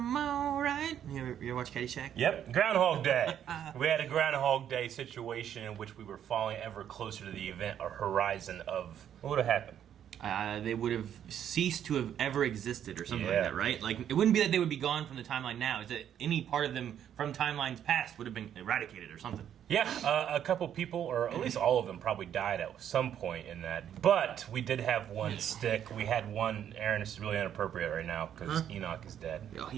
alright. You ever watch Caddyshack? Yep, Groundhog Day. We had a Groundhog Day situation in which we were falling ever closer to the event or horizon of... What would have happened? They would have ceased to have ever existed or something Yeah. like that, right? Like, it wouldn't be that they would be gone from the timeline now. It's that any part of them from timelines past would have been eradicated or something. Yeah, a couple people, or at least all of them, probably died at some point in that. But we did have one stick. We had one... Aaron, this is really inappropriate right now because Enoch is dead. Oh,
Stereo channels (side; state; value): left; quieter; 9.7 dB